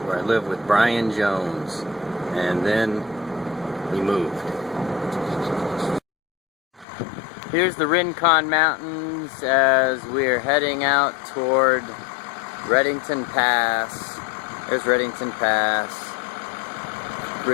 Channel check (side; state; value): right; drops out; at 6.9 s